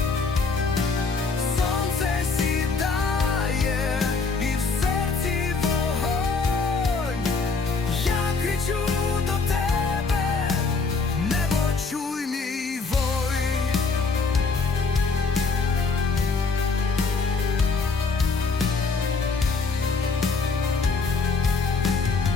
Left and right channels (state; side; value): quieter; right; 4.3 dB